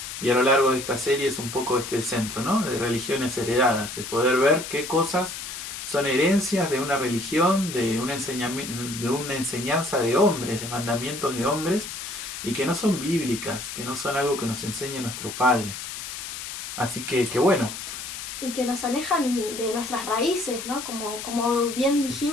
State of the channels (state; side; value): noise; left; hiss, 8 dB below the sound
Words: Y a lo largo de esta serie es un poco el centro, ¿no? De religiones heredadas, de poder ver qué cosas son herencias de una religión, de una enseñanza de hombres, de mandamientos de hombres, y que no son bíblicas, que no son algo que nos enseñe nuestro Padre. Así que bueno. Y que nos alejan de nuestras raíces, ¿no? Como bien